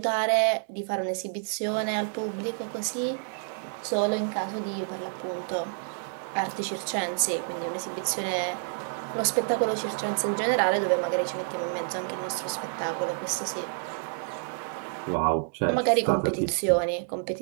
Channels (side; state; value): left; silent; digital silence